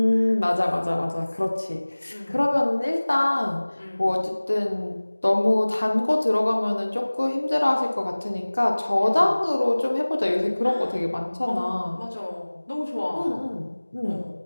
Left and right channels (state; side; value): inverted; both; correlation -1.00